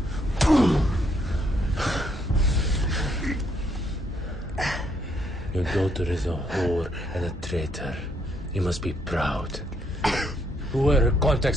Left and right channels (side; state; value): both; normal; correlation 0.73